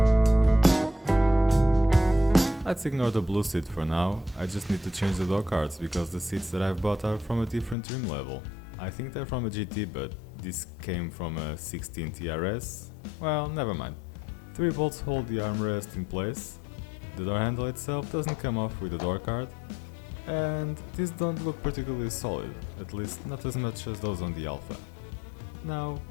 Let's ignore the blue seat for now. I just need to change the door cards because the seats that I've bought are from a different trim level. I think they're from a GT, but this came from a 16 TRS. Well, never mind. 3 bolts hold the armrest in place. The door handle itself doesn't come off with the door card. And these don't look particularly solid, at least not as much as those on the Alpha. Now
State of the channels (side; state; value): right; drops out; at 7.8 s